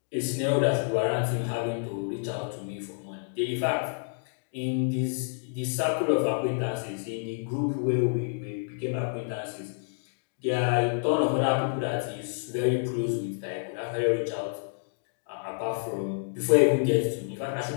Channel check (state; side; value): silent; right; digital silence